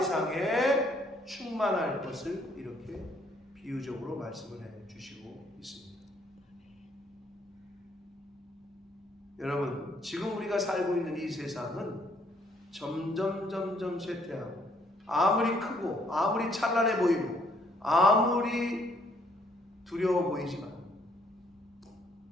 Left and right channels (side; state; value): both; normal; correlation 0.66